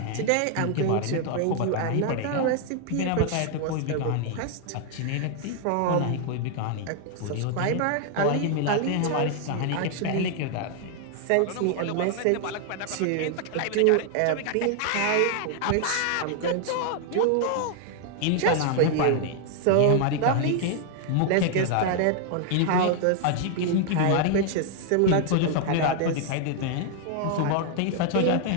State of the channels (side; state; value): both; different; correlation 0.00